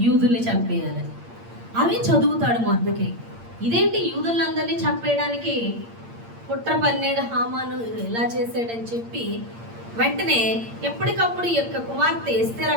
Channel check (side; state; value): left; late; 8.7 ms